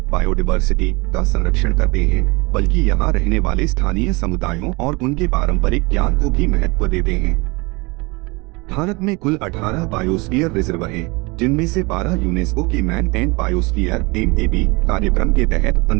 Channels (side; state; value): left; quieter; 26.2 dB